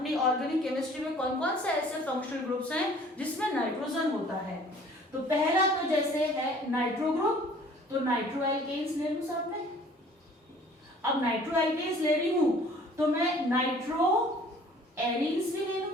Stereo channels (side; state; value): both; normal; correlation 0.52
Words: ऑर्गेनिक केमिस्ट्री में कौन कौन से ऐसे फंक्शनल ग्रुप्स हैं जिसमें नाइट्रोजन होता है। तो पहला तो जैसे है नाइट्रो ग्रुप, तो नाइट्रो एल्केन्स ले लूं साथ में। अब नाइट्रो एल्केन्स ले रही हूं तो मैं नाइट्रो एरीन्स भी ले